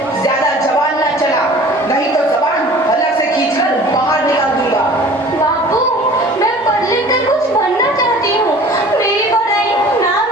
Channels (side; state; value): both; normal; correlation 0.45